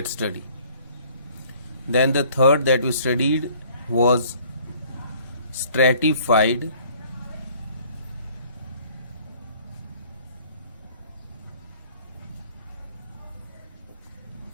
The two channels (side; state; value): both; inverted; correlation -0.57